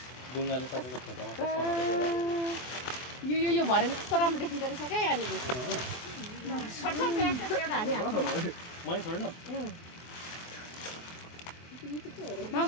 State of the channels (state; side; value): late; right; 24 ms